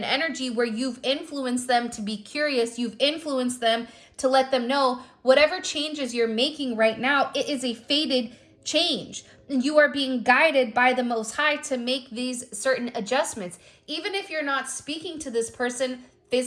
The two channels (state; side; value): identical; both; correlation 1.00